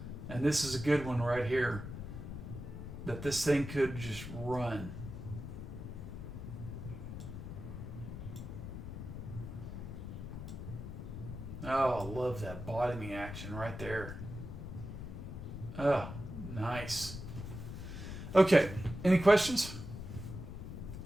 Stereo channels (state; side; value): noise; left; rumble, 8 dB below the sound